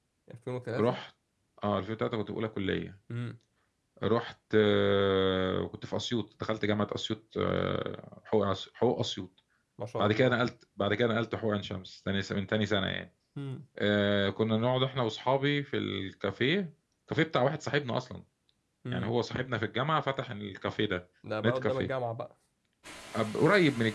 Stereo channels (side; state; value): both; identical; correlation 1.00